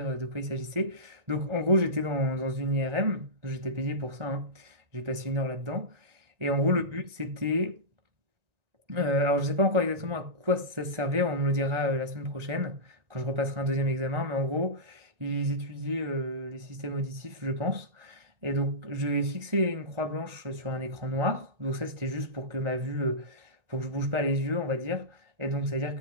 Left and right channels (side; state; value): left; late; 1.9 ms